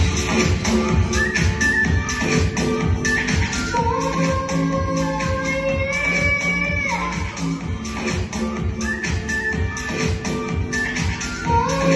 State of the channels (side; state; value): both; identical; correlation 1.00